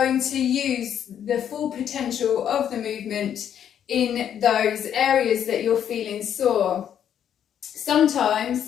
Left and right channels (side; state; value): right; quieter; 9.3 dB